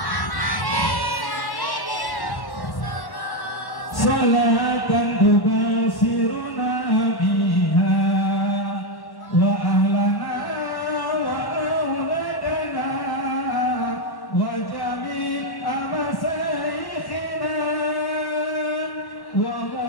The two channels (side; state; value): right; late; 1.1 ms